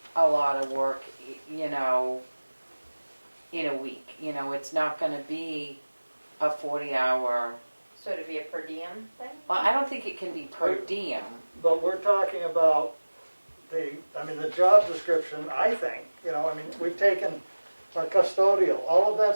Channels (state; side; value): inverted; both; correlation -1.00